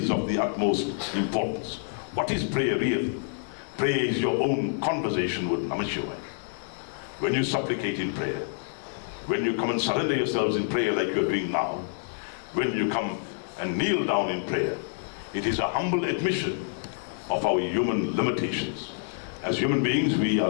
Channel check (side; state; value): right; silent; 58 dB below the other